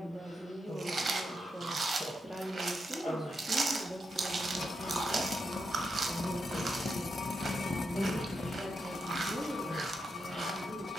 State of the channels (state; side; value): normal; both; correlation 0.84